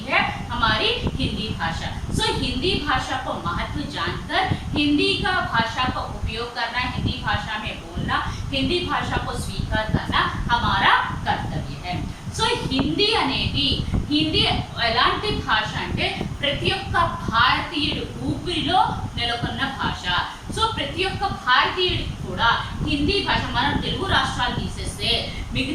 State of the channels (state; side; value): identical; both; correlation 1.00